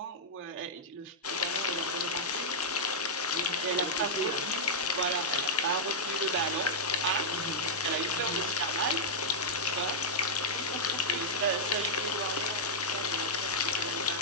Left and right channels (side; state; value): both; normal; correlation -0.07